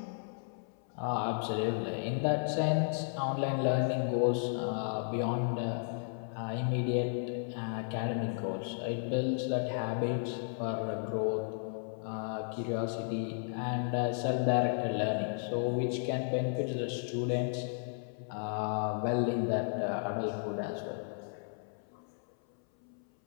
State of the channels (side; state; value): right; silent; 55 dB below the other